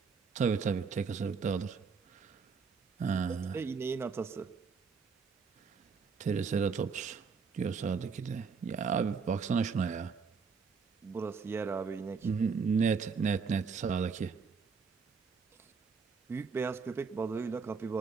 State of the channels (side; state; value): left; quieter; 5.4 dB